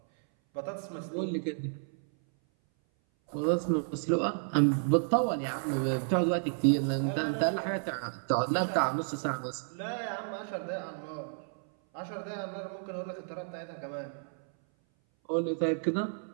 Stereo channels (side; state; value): left; silent; 57 dB below the other